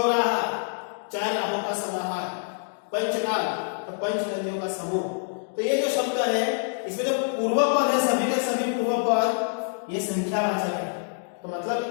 चार राहों का समाहार, पंचनाल तो पंच नदियों का समूह। तो ये जो शब्द है इसमें जो पूर्व पद है सभी के सभी पूर्व पद ये संख्यावाचक है। तो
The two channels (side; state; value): right; silent; digital silence